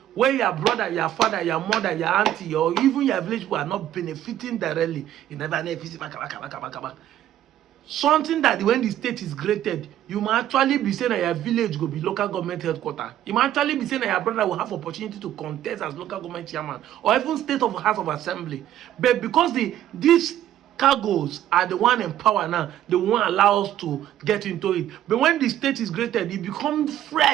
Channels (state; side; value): quieter; left; 12.1 dB